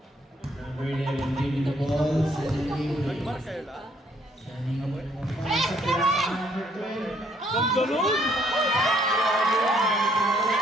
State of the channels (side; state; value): both; normal; correlation 0.66